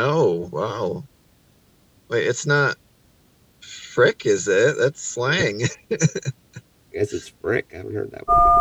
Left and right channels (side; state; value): both; identical; correlation 1.00